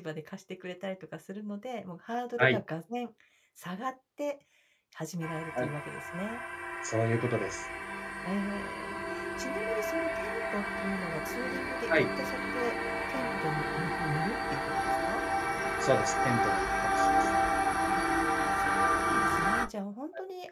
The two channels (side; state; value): both; identical; correlation 1.00